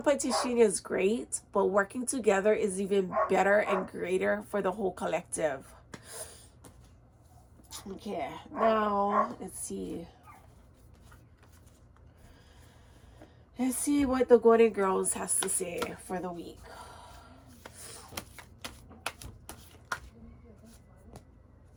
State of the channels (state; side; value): identical; both; correlation 1.00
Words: is great, but working together is even better and greater for the whole collective. Okay, now let's see what the Golden Girls has to say for the week.